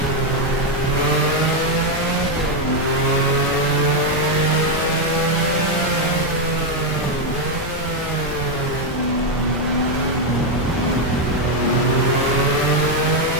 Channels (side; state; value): both; normal; correlation 0.03